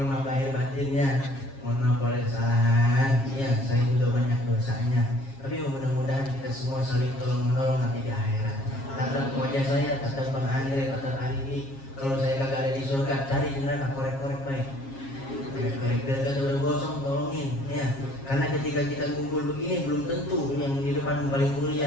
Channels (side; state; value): right; late; 7.4 ms